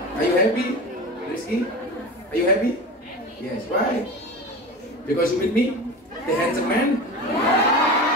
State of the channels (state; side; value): normal; both; correlation 0.30